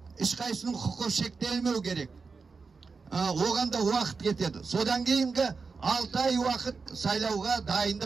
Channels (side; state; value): left; quieter; 4.7 dB